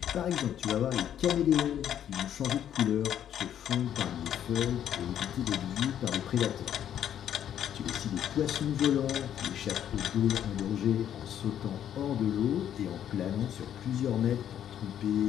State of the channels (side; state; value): right; quieter; 10.1 dB